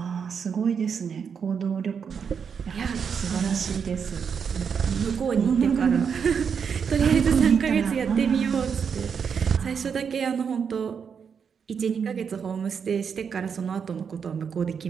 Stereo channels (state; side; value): quieter; left; 6.7 dB